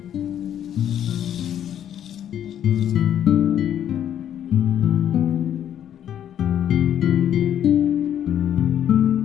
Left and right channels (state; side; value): quieter; right; 10.2 dB